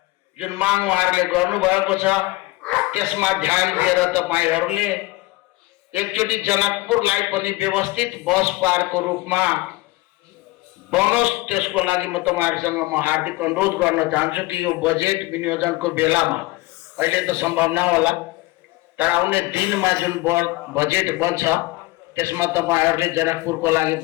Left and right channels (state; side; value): quieter; right; 20.6 dB